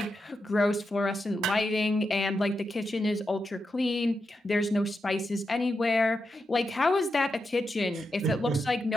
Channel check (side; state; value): both; normal; correlation 0.87